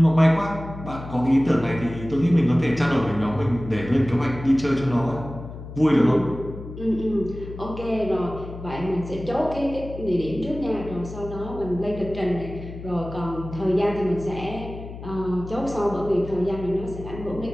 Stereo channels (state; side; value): noise; left; hum, 12 dB below the sound